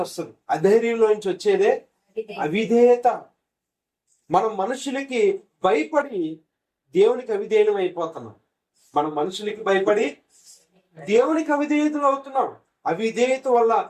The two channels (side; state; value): both; identical; correlation 1.00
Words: వస్తుంది. అధైర్యంలో నుంచి వచ్చేదే అవిధేయత. మనం మనుషులకి భయపడి దేవునికి అవిధేయం అయిపోతున్నాం. మనం మనుషులకి భయపడి దేవునికి అవిధేయతలు అవుతున్నాం. అవిధేయత వల్ల